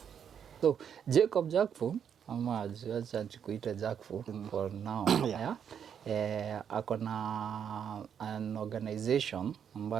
So Jacob Jakfu, ama acha tukuite Jakfu for now. Ako na an organization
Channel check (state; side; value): quieter; left; 8.1 dB